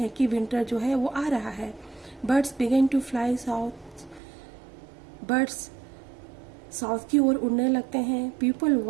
कि विंटर जो है वो आ रहा है। Birds began to fly south, birds south की ओर उड़ने लगते हैं। People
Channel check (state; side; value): drops out; left; at 4.2 s